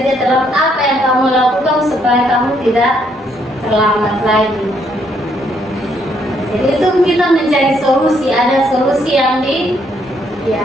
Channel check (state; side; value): normal; both; correlation 0.71